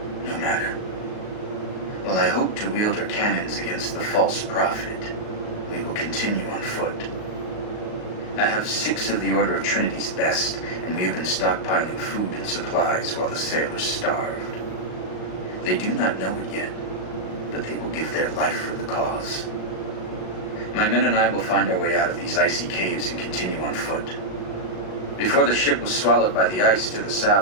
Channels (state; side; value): late; right; 38 ms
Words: No matter. While I hope to wield her cannons against the false prophet, we will continue on foot. I have 6 of the Order of Trinity's best, and we have been stockpiling food and supplies while the sailors starved. They do not know it yet, but they will give their life for the cause. My men and I will find our way out of these icy caves and continue on foot. Before the ship was swallowed by the ice to the